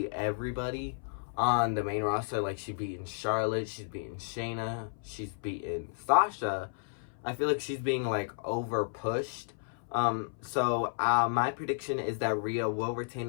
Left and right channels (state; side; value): silent; right; 55 dB below the other